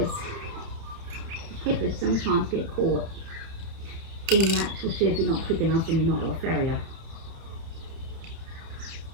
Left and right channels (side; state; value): left; late; 30 ms